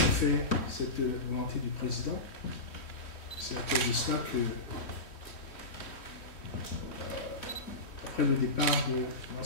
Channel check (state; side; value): late; right; 3.1 ms